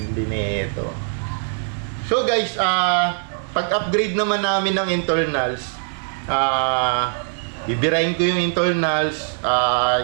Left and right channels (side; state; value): left; silent; digital silence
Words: nito. So guys, pag-upgrade naman namin ng internals, bibirahin ko yung internals,